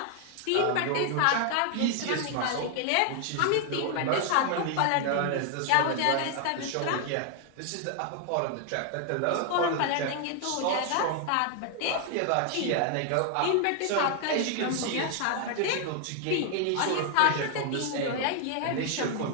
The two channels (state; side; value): different; both; correlation 0.00